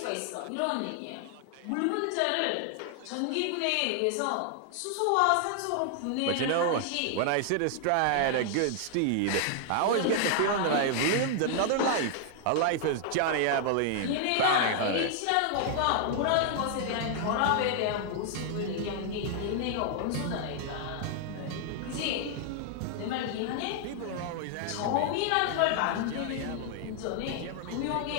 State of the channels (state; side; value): different; both; correlation 0.00